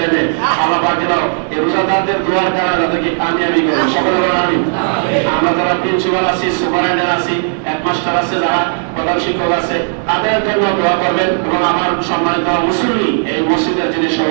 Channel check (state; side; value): silent; left; 62 dB below the other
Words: মেয়ে, আল্লাহ পাক যেন এই রোজাদারদের দোয়ার দ্বারা যাদেরকে কামিয়াবি করেন, সকলে বলেন আমিন। আমরা যারা প্রিন্সিপাল আছি, সুপারিনটেন্ডেন্ট আছি, হেডমাস্টার আছে, যারা প্রধান শিক্ষক আছে, তাদের জন্য দোয়া করবেন। এবং আমার সম্মানিত মুসল্লি, এই মসজিদের যিনি